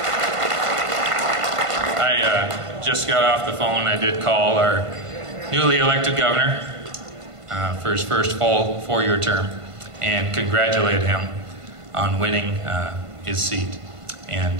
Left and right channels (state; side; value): late; left; 1.5 ms